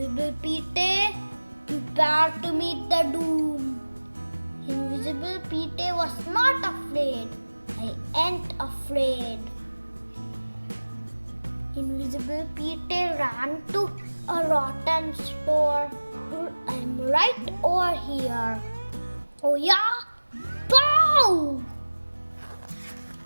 Petey, prepare to meet the doom. Invisible Petey was not afraid. I ain't afraid. Invisible Invisible Petey ran to a rotten store. I'm right over here. Oh yeah? Pow!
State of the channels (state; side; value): inverted; both; correlation -1.00